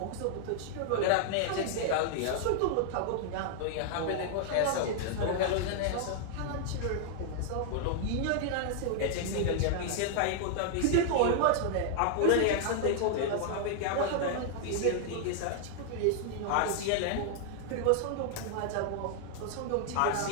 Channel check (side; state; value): both; different; correlation -0.01